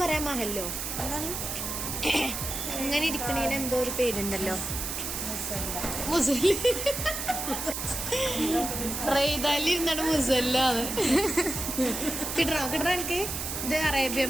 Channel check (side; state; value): right; noise; hiss, 4 dB below the sound